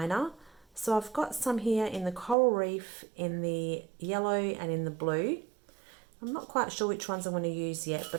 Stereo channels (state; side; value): drops out; left; at 2.4 s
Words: So I've got some here in the coral reef, in the yellow and in the blue. I'm not quite sure which ones I'm going to use yet, but